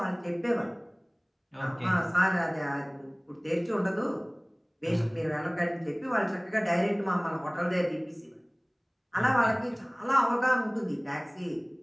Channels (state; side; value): identical; both; correlation 1.00